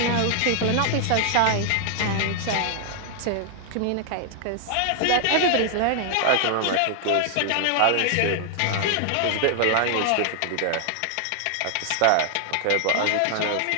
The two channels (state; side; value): different; both; correlation 0.00